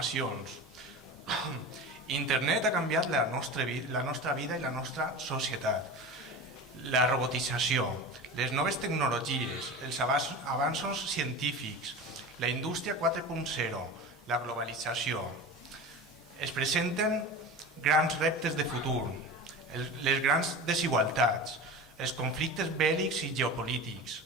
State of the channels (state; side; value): normal; both; correlation 0.31